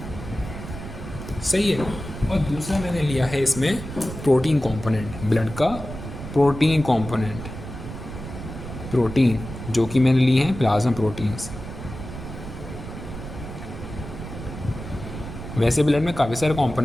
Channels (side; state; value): right; noise; rumble, 10 dB below the sound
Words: सही है, और दूसरा मैंने लिया है इसमें प्रोटीन कंपोनेंट, ब्लड का प्रोटीन कंपोनेंट, प्रोटीन जो कि मैंने लिए हैं प्लाज्मा प्रोटीन्स। वैसे ब्लड में काफ़ी सारे